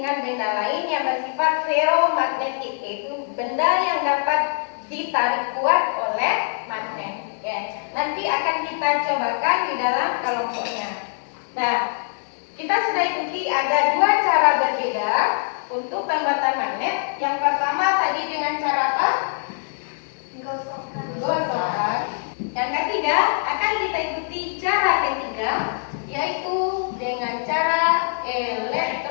benda lain yang bersifat ferromagnetik, yaitu benda yang dapat ditarik kuat oleh magnet. Ya, nanti akan kita cobakan di dalam kelompoknya. Nah, kita sudah ikuti ada dua cara berbeda untuk pembuatan magnet. Yang pertama tadi dengan cara apa? Gosokkan. Yang ketiga akan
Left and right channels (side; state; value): right; silent; 63 dB below the other